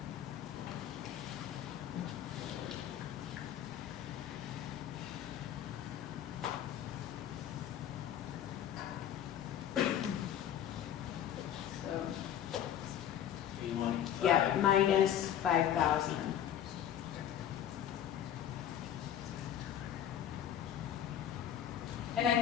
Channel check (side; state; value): right; quieter; 10.3 dB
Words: So, You want yeah, five? minus 5,000. and